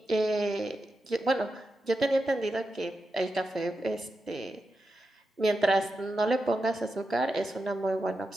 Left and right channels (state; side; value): normal; both; correlation 0.89